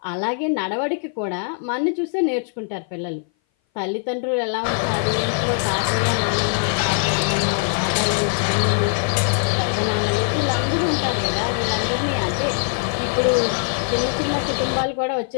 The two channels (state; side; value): silent; right; 58 dB below the other